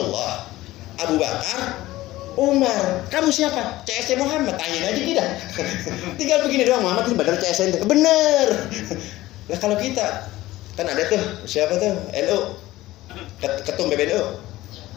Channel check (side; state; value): right; quieter; 17.0 dB